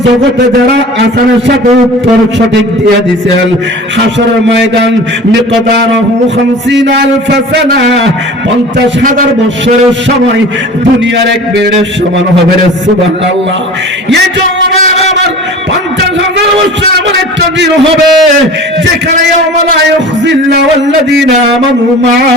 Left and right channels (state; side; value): normal; both; correlation 0.39